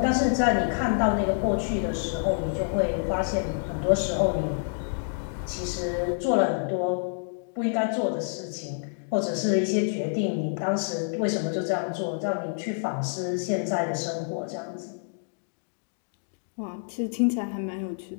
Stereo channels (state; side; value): silent; right; digital silence